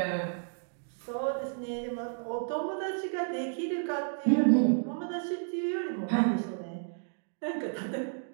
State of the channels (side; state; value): left; silent; digital silence